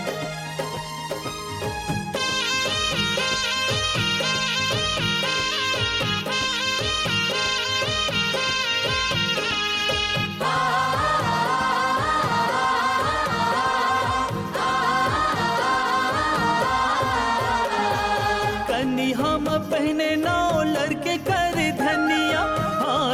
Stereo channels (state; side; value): identical; both; correlation 1.00